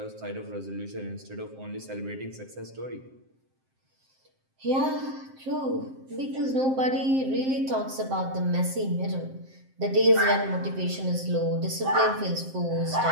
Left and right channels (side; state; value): left; late; 7.6 ms